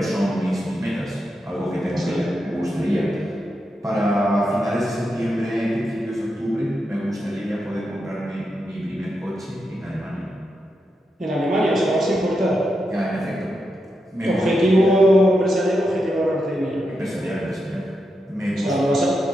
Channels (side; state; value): both; normal; correlation 0.86